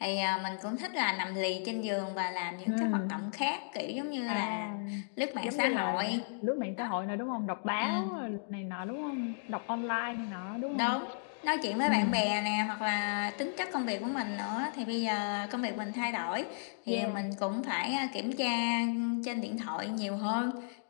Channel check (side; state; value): right; silent; digital silence